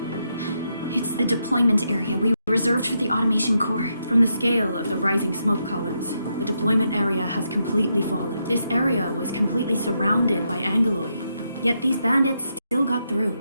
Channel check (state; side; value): inverted; both; correlation -0.81